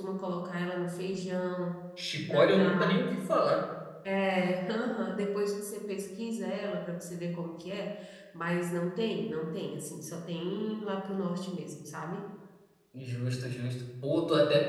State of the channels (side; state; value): both; identical; correlation 1.00